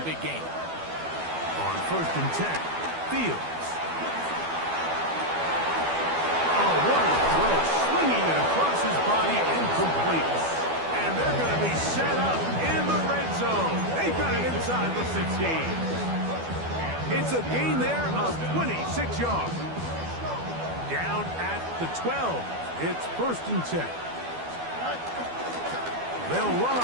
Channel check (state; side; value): late; left; 12 ms